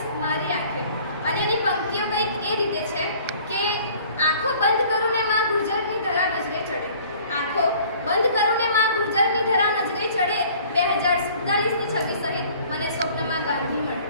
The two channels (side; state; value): both; inverted; correlation -0.52